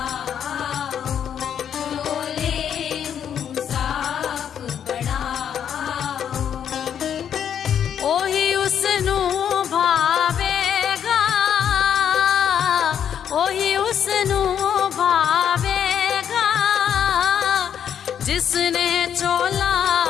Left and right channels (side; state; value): right; quieter; 8.8 dB